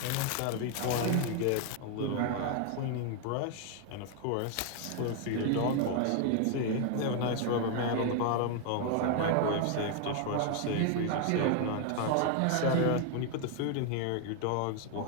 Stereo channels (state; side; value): different; both; correlation 0.01